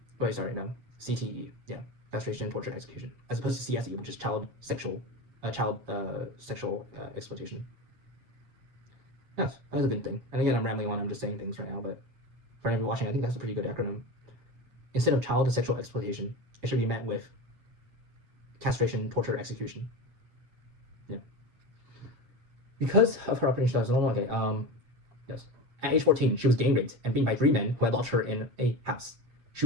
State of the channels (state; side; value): late; left; 8.2 ms